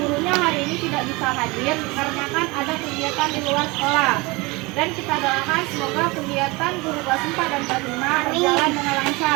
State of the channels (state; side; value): quieter; left; 24.6 dB